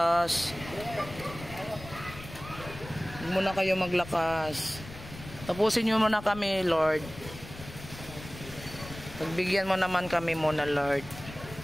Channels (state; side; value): noise; left; rumble, 14 dB below the sound